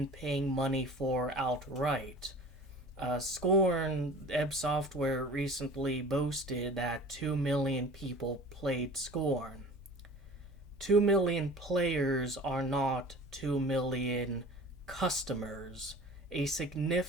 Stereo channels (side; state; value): both; normal; correlation 0.42